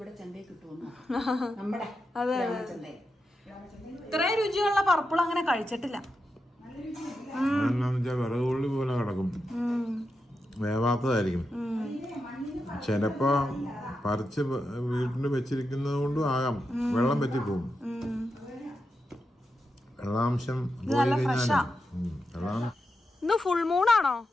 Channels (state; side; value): normal; both; correlation 0.88